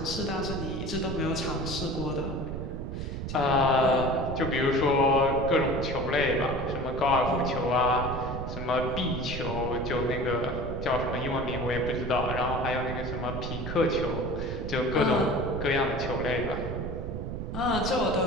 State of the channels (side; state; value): right; noise; rumble, 5 dB below the sound